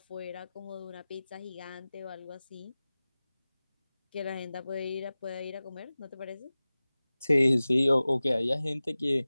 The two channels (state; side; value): inverted; both; correlation -0.97